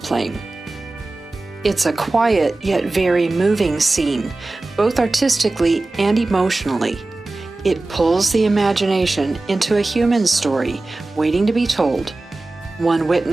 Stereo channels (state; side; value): quieter; left; 3.1 dB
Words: It's a quiet yet very moving scene, both artistically and emotionally. It pulls the imagination into a human story waiting to be told, one